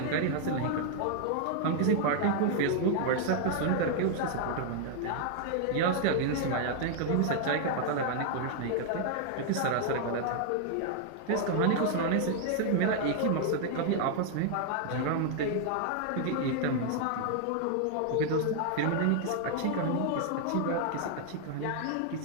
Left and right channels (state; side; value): different; both; correlation 0.00